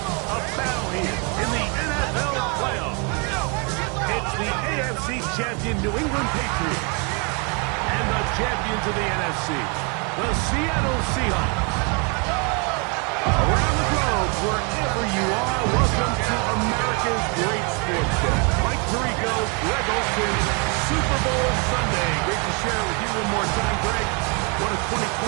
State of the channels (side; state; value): left; quieter; 32.8 dB